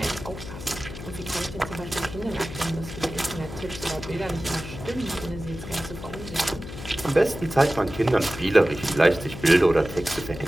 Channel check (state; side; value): noise; left; hum, 11 dB below the sound